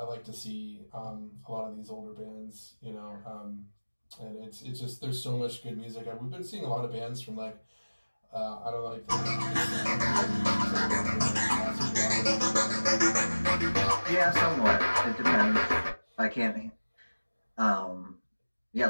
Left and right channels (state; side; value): inverted; both; correlation -1.00